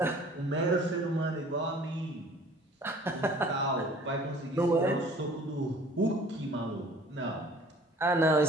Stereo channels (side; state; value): both; normal; correlation 0.51